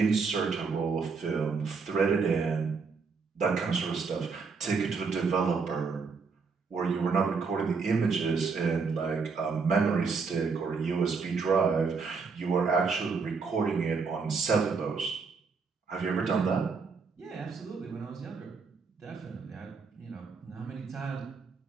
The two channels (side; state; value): left; quieter; 5.0 dB